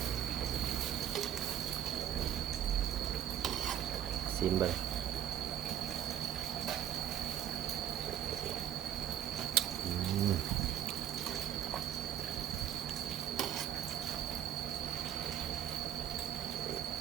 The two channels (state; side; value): quieter; left; 10.5 dB